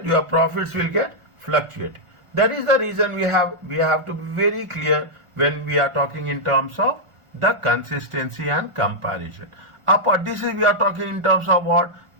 your profits will get fluctuated. That is the reason we have to be very clear when we are talking in terms of the consistency and comparison. This is we are talking in terms of what?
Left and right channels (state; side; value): late; left; 1.4 ms